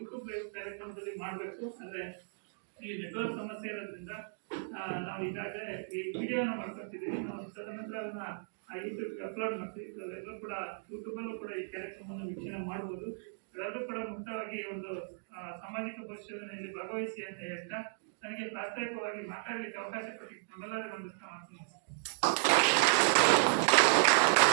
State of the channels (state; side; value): silent; left; digital silence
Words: ಲೈವ್ ಕಾರ್ಯಕ್ರಮದಲ್ಲಿ ಮಾಡಬೇಕು. ಅಂದ್ರೆ ಈ ನೆಟ್ವರ್ಕ್ ಸಮಸ್ಯೆ ಇರೋದ್ರಿಂದ ನಾವು ಈಗಾಗಲೇ ಈ ವಿಡಿಯೋನ ಮಾಡ್ಕೊತಿದ್ದೀವಿ. ನಾವು ತದನಂತರ ಅದನ್ನ ಯೂಟ್ಯೂಬ್ಗೆ ಅಪ್ಲೋಡ್ ಮಾಡ್ತೀವಿ. ಎಲ್ಲರೂ ಕೂಡ ಯೂಟ್ಯೂಬಲ್ಲೂ ಕೂಡ ಈ ಕಾರ್ಯಕ್ರಮವನ್ನು ವೀಕ್ಷಣೆ ಮಾಡ್ಬೋದು. ಎಲ್ಲರೂ ಕೂಡ ಮುಕ್ತವಾಗಿ ಒಂದು ಸಾಮಾಜಿಕ ಪರಿಶೋಧನೆಯಲ್ಲಿ ಭಾಗವಹಿಸಿ ಅಂತ ಹೇಳ್ತಾ ನನಗೆ ಪ್ರಾಸ್ತಾವಿಕವಾಗಿ ಮಾತಾಡಲಿಕ್ಕೆ ಅವಕಾಶ ಕೊಟ್ಟಿದ್ದು ನಮ್ಮೆಲ್ಲರಿಗೂ ಒಂದು ಮಾಡ್ತೀನಿ.